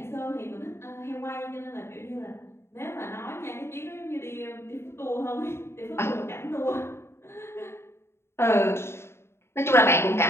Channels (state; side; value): late; right; 0.12 ms